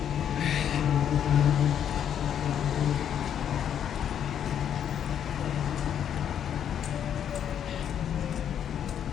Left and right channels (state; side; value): quieter; right; 9.2 dB